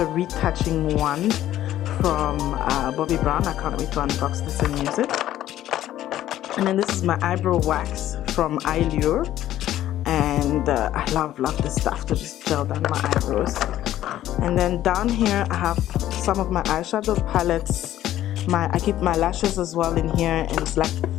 retouching one from Bobbi Brown. I can't wait to unbox this and use it. And then this is my eyebrow wax from Eyelure. And I love this stuff to just gel down my eyebrows. And then down here I have some of my eyeshadow palettes. I keep my lashes as well in here, and it's like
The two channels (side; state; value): right; quieter; 13.0 dB